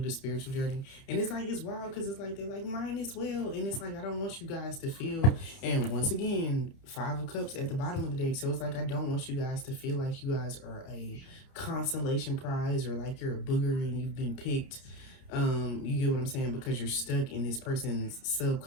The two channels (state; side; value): late; right; 30 ms